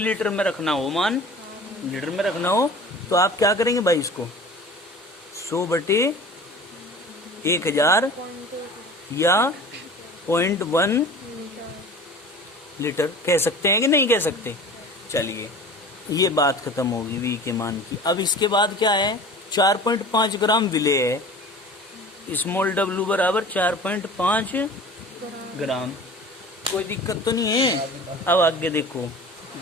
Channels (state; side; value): normal; both; correlation 0.40